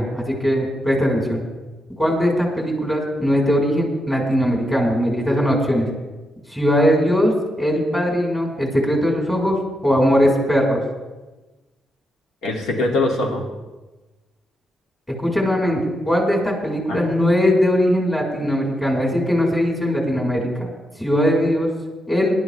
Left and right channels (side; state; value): both; normal; correlation 0.83